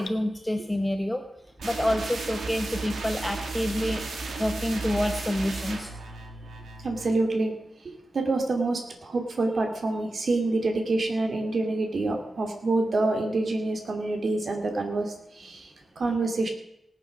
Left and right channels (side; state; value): both; normal; correlation 0.93